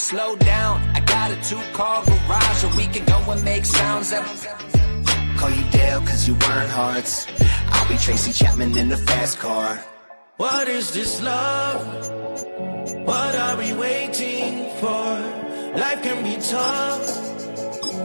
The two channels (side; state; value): both; inverted; correlation -1.00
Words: down, I got a 2-car garage, or we can go and make sounds that... Call you Dale, cause you weren't hearts. I'll be Tracy Chapman in the fast car. What is this love? What are we waiting for? Life can be tough,